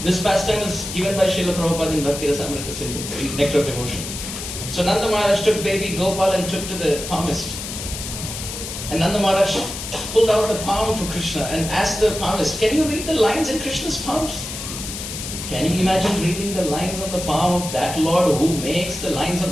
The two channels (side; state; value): left; noise; hiss, 7 dB below the sound